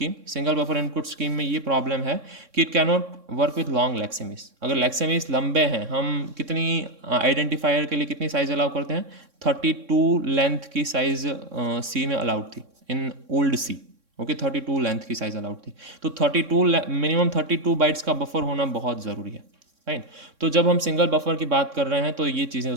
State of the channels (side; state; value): left; late; 3.6 ms